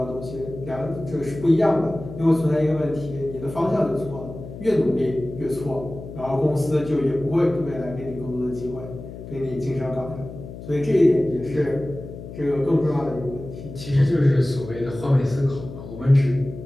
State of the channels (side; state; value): left; noise; hum, 12 dB below the sound